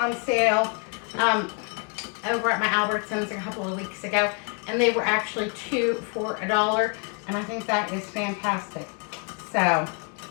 sale over at my Albertsons a couple of weeks ago, and they were actually 2 for $1, and I think that is fantastic. So,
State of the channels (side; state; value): right; quieter; 36.8 dB